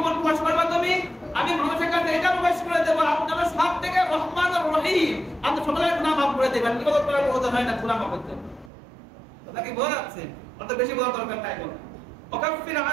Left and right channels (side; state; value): left; drops out; at 8.7 s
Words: প্রকাশ করবা তুমি? আমি মানুষের কাছে এটা প্রকাশ করে দেবো, আপনারা সব থেকে রহমান আর রহিম, আপনি সকলের গুনাহ মাফ করে দেবেন। কি বলতে পারবো? ওটা হয় না, গুনাহ মাফ করতে কথা কি বোঝা যাচ্ছে? অত বেশি বোঝা দরকার নাই। বল ওয়াকাফির